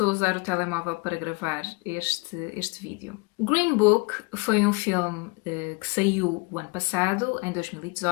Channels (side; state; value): right; quieter; 28.7 dB